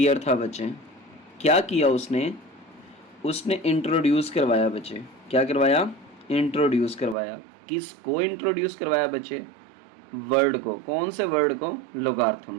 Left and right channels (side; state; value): left; drops out; at 7.2 s